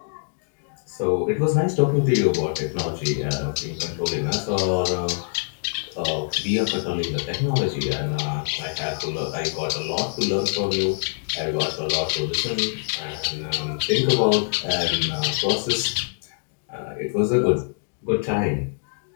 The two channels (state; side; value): silent; right; digital silence